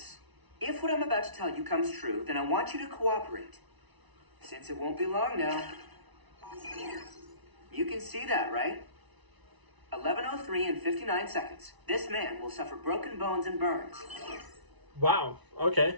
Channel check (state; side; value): late; left; 1.0 ms